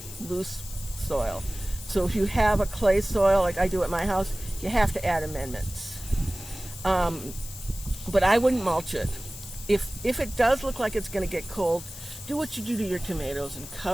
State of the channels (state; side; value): noise; left; hiss, 13 dB below the sound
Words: loose soil. So if you have a clay soil, like I do at my house, you have to add amendments. But I wouldn't mulch it. If it does look like it's going to get cold, do what you do to your tomatoes and